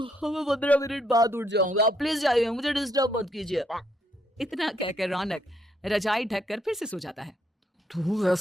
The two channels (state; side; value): normal; both; correlation 0.73